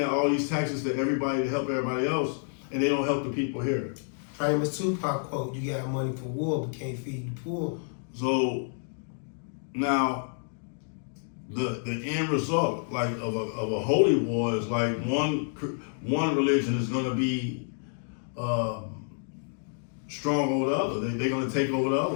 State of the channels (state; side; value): silent; right; 59 dB below the other